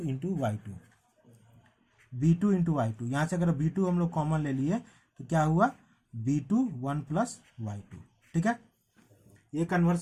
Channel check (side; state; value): both; identical; correlation 1.00